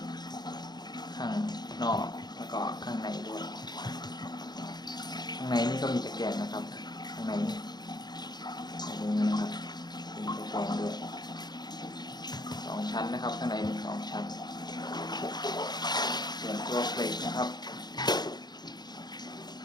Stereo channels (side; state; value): right; late; 0.20 ms